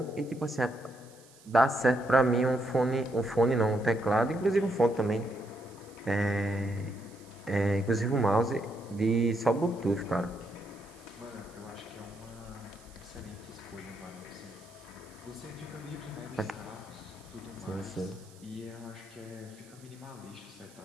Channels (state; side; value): noise; right; hiss, 25 dB below the sound